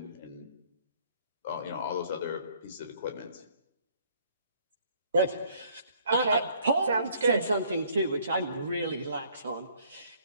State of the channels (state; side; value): inverted; both; correlation -0.61